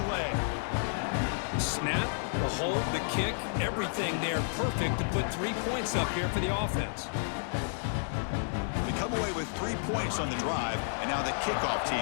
leg. Snap, the hold, the kick, everything there perfect to put 3 points up here for the offense. They come away with 3 points on the drive, and now the kickoff team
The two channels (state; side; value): silent; right; 57 dB below the other